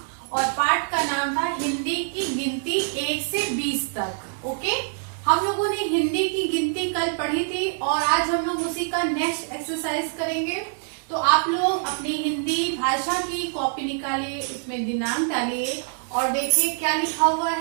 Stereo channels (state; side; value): silent; left; digital silence